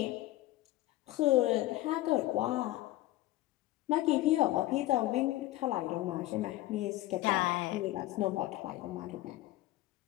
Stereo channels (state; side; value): quieter; right; 16.7 dB